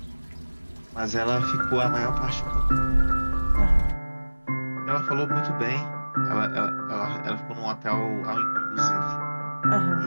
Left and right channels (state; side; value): inverted; both; correlation -1.00